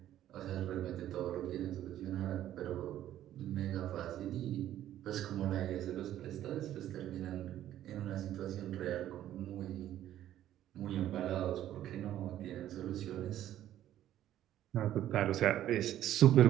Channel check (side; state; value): left; quieter; 12.3 dB